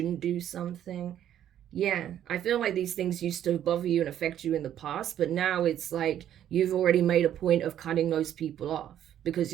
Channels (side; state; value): left; quieter; 10.8 dB